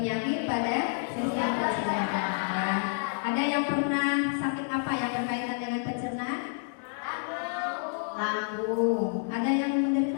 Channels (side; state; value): right; silent; digital silence